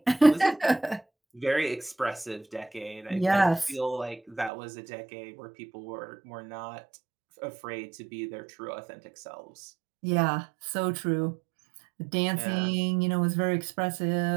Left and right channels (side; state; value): left; drops out; at 4.5 s